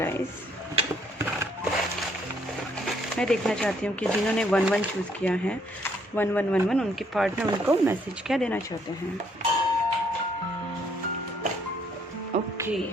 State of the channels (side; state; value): both; normal; correlation 0.68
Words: मैं देखना चाहती हूँ कि जिन्होंने 11 चूज़ किया है, 1111, उनके पार्टनर उनको मैसेज क्या देना चाहते हैं। ओके,